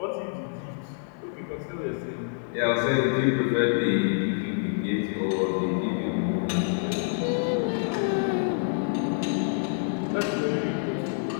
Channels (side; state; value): right; silent; 55 dB below the other